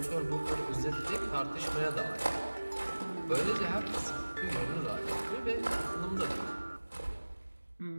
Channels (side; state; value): both; inverted; correlation -1.00